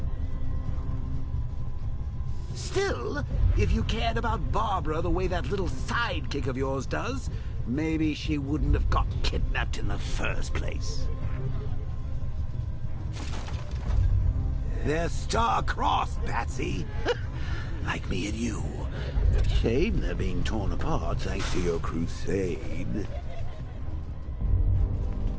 Still, if you cared about Barbara the way that little sidekick of yours does, maybe she wouldn't have got kidnapped in the first place. They're star-crossed, Patsy. Like me and you. Shame they're being torn apart thanks to your crusade.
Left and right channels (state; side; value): identical; both; correlation 1.00